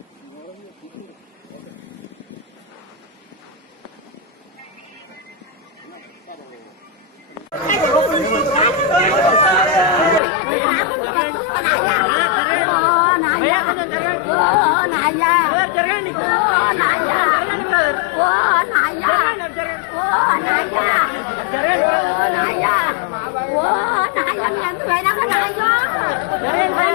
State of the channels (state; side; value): drops out; right; at 10.2 s